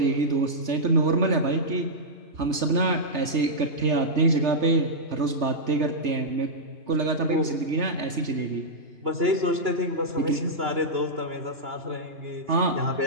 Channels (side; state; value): left; late; 3.3 ms